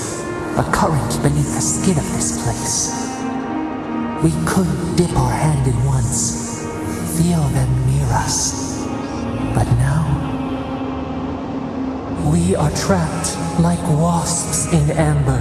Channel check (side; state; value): both; identical; correlation 1.00